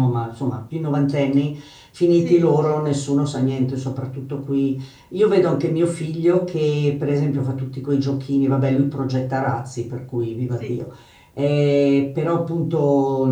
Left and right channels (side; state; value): both; identical; correlation 1.00